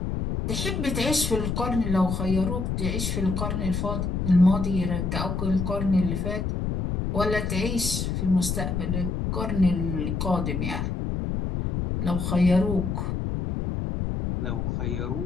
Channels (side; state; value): left; noise; rumble, 1 dB below the sound